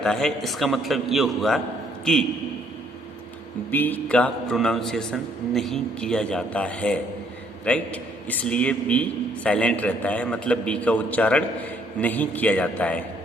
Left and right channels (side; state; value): both; normal; correlation 0.66